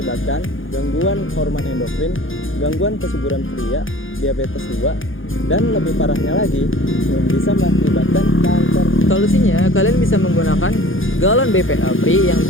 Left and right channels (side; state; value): right; late; 0.58 ms